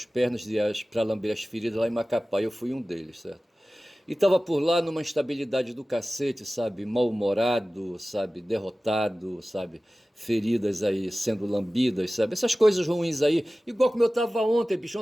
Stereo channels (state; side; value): normal; both; correlation 0.97